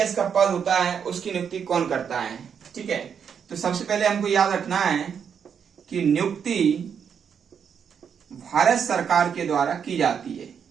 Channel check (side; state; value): left; quieter; 7.4 dB